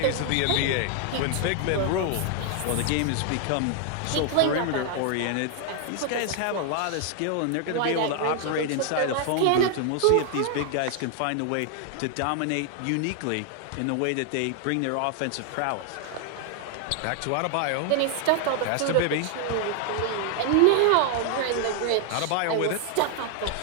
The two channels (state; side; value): different; both; correlation 0.00